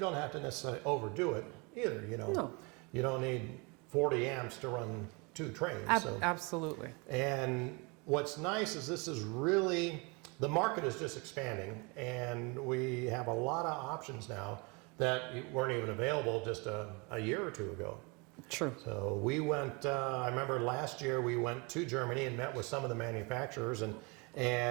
don't have to necessarily overdo it either. No. You don't need 40 amps to run 2 trains. Absolutely. And what's nice is this is really, the market is just expanding, and we have a lot of options now that weren't even available just a year or 2 ago. True. So we went, I remember last year we went to Germany and met with some of the manufacturers and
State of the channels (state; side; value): quieter; left; 29.6 dB